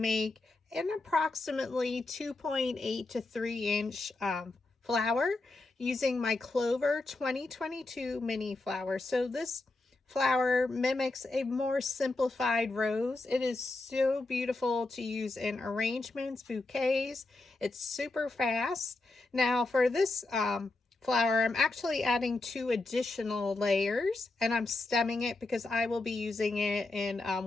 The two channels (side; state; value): right; quieter; 3.1 dB